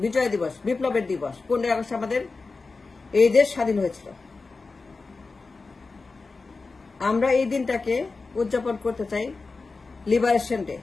বিজয় দিবস, বিপ্লবের দিবস। 15 আগস্ট আমাদের এই দেশ স্বাধীন হয়েছিল। আমরা এই দিনটাকে উদযাপন করতে চাই লিবারেশন ডে।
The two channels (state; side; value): quieter; right; 4.0 dB